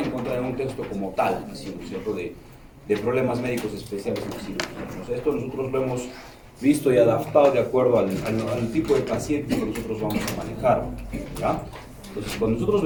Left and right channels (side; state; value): both; identical; correlation 1.00